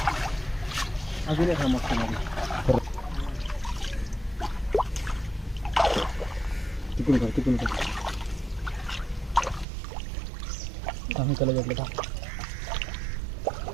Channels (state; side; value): drops out; left; at 9.7 s